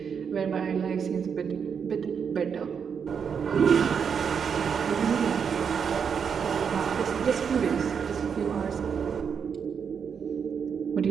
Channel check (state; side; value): quieter; left; 6.8 dB